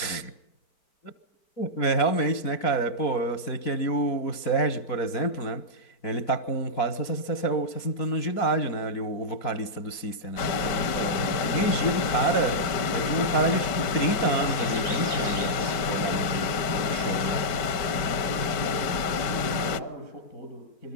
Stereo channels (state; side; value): late; right; 4.5 ms